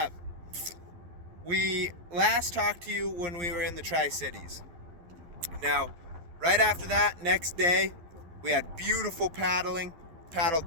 We last talked to you when we were in the Tri-Cities. Now, right after that, next day, we had beautiful paddling. Paddled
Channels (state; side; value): late; left; 11 ms